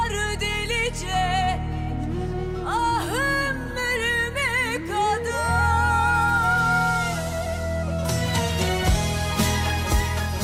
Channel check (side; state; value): both; identical; correlation 1.00